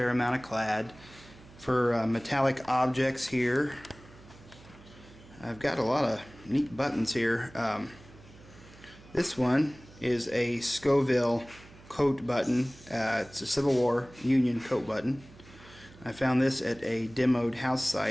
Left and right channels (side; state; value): right; noise; hum, 22 dB below the sound